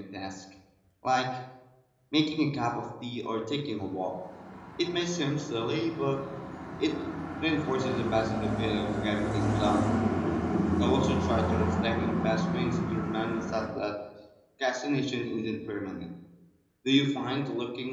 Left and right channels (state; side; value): identical; both; correlation 1.00